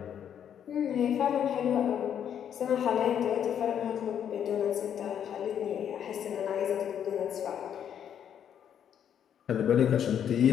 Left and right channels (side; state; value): right; quieter; 9.0 dB